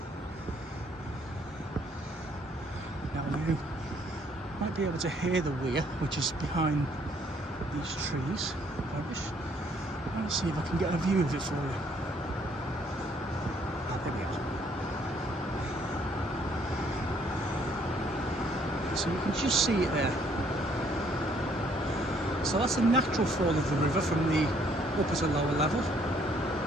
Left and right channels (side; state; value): both; normal; correlation 0.65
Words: Now you might be able to hear the weir, which is behind these trees. I want to see if I can get a view of it for you. There we are. So you can just see it there. So that's the natural fall of the river from the upper to lower level,